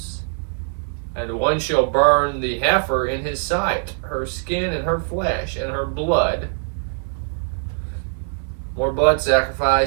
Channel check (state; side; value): silent; left; 64 dB below the other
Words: And one shall burn the heifer in his sight, her skin and her flesh and her blood. More blood